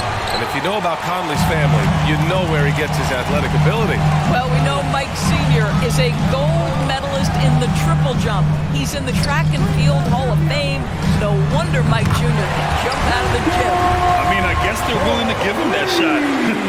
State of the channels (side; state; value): both; identical; correlation 1.00